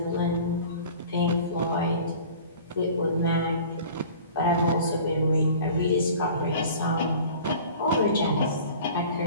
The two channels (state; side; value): inverted; both; correlation -0.44